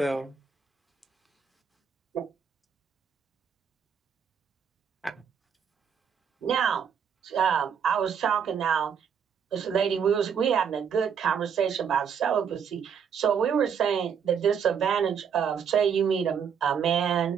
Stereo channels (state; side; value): quieter; left; 7.3 dB